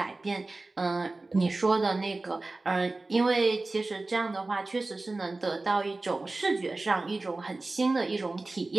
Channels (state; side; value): quieter; left; 3.2 dB